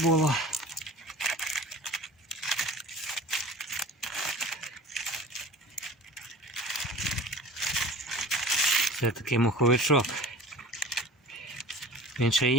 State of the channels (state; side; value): normal; both; correlation 0.41